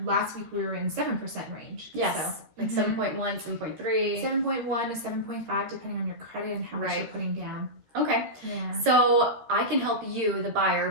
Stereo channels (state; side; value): late; left; 13 ms